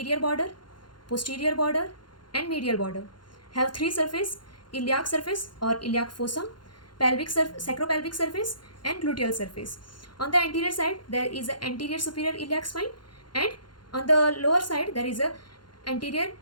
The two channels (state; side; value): late; right; 0.71 ms